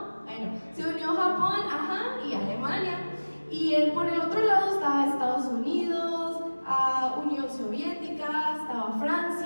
Bueno, se unió Japón, y Alemania. Y por el otro lado estaba Estados Unidos, Unión Soviética, estaba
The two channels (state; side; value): inverted; both; correlation -1.00